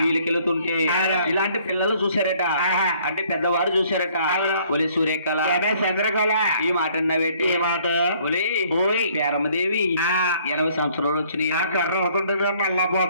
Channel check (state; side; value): inverted; both; correlation -0.61